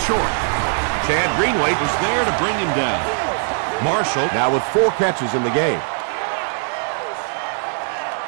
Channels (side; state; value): left; silent; digital silence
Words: short. Chad Greenway was there to bring him down. Marshall now with 4 catches in the game.